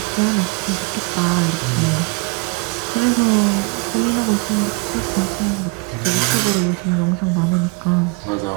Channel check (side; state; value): left; quieter; 27.4 dB